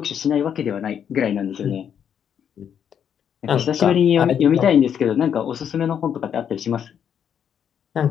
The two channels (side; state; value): right; quieter; 8.4 dB